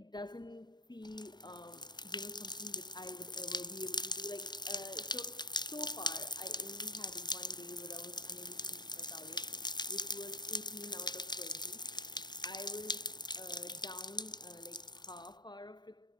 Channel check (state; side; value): late; right; 0.21 ms